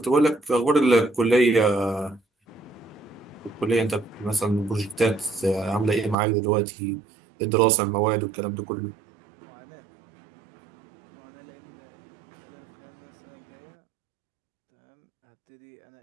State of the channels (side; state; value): left; drops out; at 6.2 s